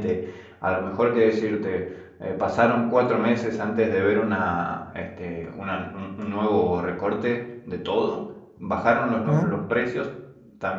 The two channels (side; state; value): both; identical; correlation 1.00